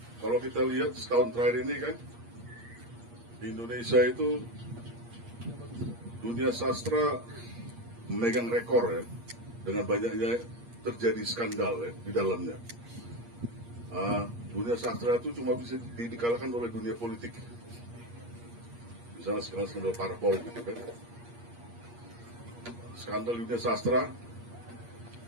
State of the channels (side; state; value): left; late; 8.5 ms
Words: kita lihat setahun terakhir ini kan di Indonesia itu dunia sastra memegang rekor ya dengan banyaknya terjadi skandal ya di dalamnya. Dunia sastra itu cuma bisa dikalahkan oleh dunia politik. Misalnya skandal parpol gitu kan. Skandal dunia sastra,